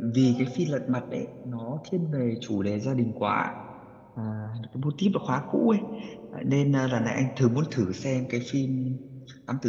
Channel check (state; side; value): identical; both; correlation 1.00